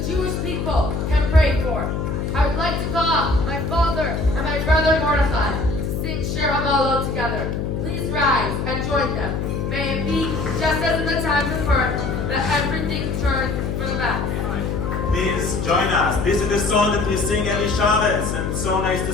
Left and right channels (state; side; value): noise; left; hum, 2 dB below the sound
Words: Jewish people, can pray for. I would like to call up my father and my brother Mordechai to sing Shir HaMalot together. Please rise and join them. May it be just as in the times of earth that everything turns for the best. Please join us. This is the song that we sing every Shabbos, and it's so nice to